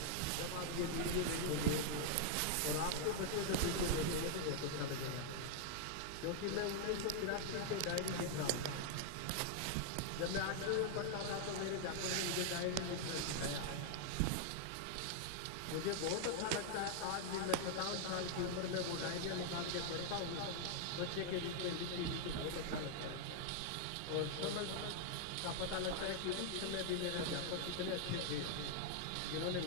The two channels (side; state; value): both; different; correlation -0.01